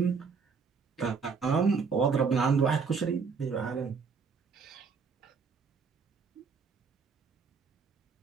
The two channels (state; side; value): quieter; left; 5.4 dB